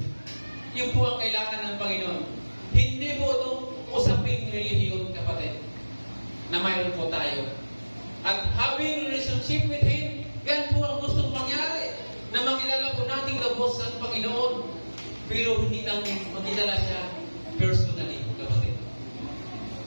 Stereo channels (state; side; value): inverted; both; correlation -1.00